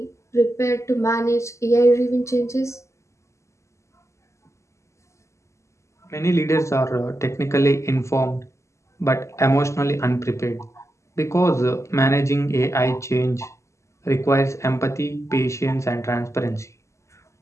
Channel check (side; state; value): right; late; 0.14 ms